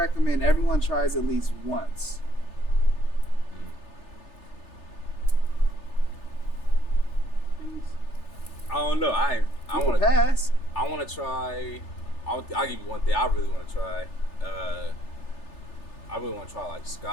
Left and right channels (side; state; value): right; late; 3.4 ms